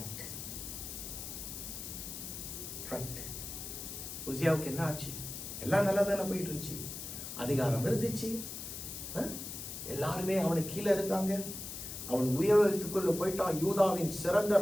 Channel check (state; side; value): noise; left; hiss, 8 dB below the sound